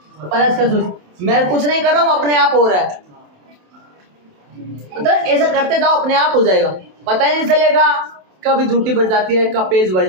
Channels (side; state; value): left; late; 27 ms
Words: का 24। मैं कुछ नहीं कर रहा हूँ, अपने आप हो रहा है। मतलब ऐसा करते जाओ, अपने आप हो जाएगा, पता ही नहीं चलेगा कभी झूठी बढ़ जाती है, कब पेज बढ़